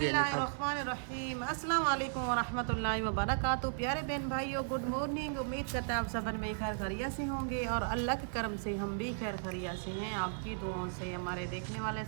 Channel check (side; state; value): left; silent; digital silence